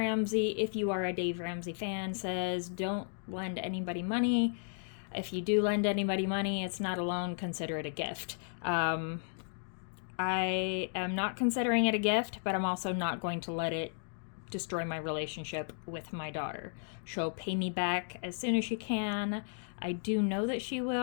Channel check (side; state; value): right; silent; digital silence